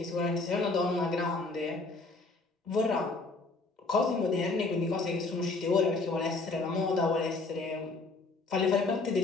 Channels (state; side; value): quieter; right; 3.6 dB